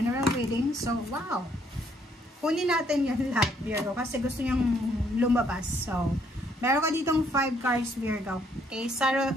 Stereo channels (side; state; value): both; normal; correlation 0.68